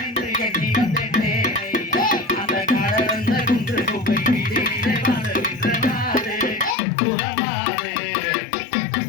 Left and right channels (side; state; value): right; drops out; at 6.8 s